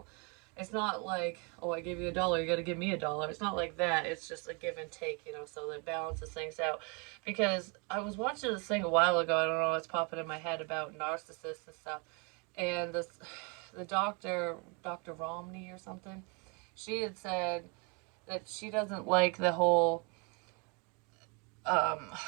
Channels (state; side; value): quieter; left; 32.5 dB